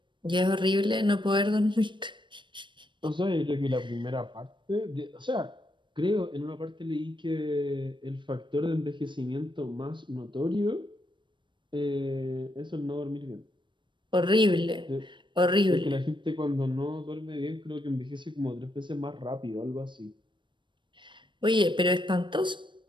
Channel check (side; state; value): left; late; 0.23 ms